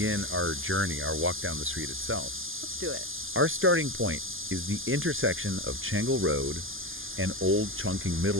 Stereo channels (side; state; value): left; late; 0.59 ms